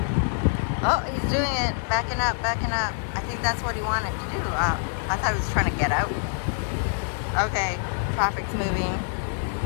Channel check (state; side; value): silent; right; digital silence